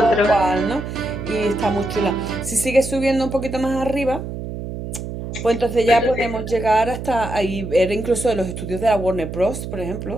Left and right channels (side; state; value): right; noise; hum, 7 dB below the sound